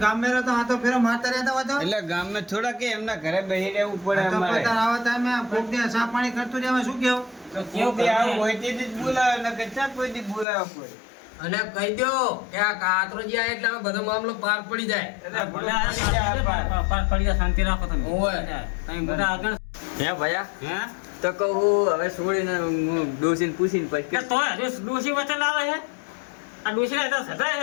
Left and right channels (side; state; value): right; drops out; at 10.5 s